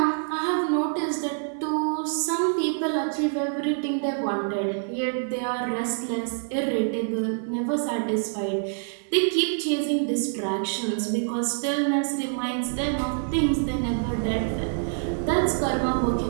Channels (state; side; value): silent; left; 61 dB below the other